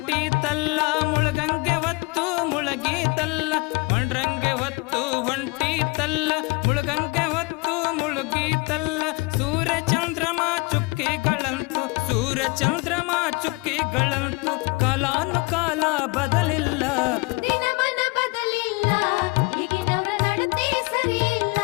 ಮುಳಗಂಗೆ ಹೊತ್ತು ಮುಳಗೀತಲ್ಲ ಒಂಡ್ರಂಗೆ ಹೊತ್ತು ಹೊಂಟಿತಲ್ಲ ಮುಳಗಂಗೆ ಹೊತ್ತು ಮುಳುಗೀತಲ್ಲ ಸೂರ್ಯ ಚಂದ್ರಮ ಚುಕ್ಕಿಗಳಂತು ಸೂರ್ಯ ಚಂದ್ರಮ ಚುಕ್ಕಿಗಳಂತು ಕಾಲಾನುಕಾಲ ಬದಲಿಲ್ಲ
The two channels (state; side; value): quieter; right; 25.6 dB